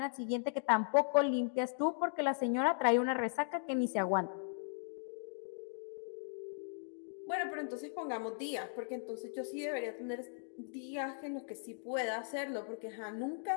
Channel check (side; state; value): right; silent; digital silence